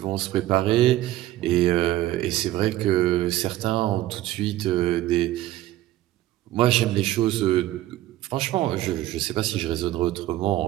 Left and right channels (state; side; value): quieter; left; 15.1 dB